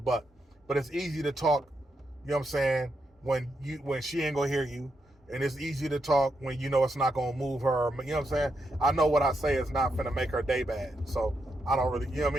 But it's easy to talk, you know what I'm saying, when she ain't gonna hear you. And it's easy to talk when you know it's not gonna move her. You know what I'm saying? I know what I say is not gonna make her day bad. So I don't really, you know what I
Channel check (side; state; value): both; normal; correlation 0.82